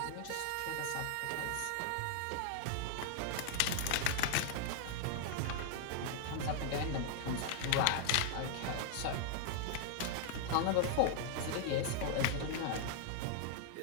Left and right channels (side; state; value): both; different; correlation 0.00